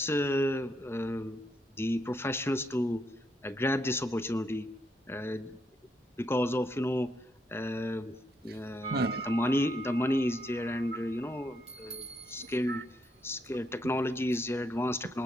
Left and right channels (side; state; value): both; normal; correlation 0.77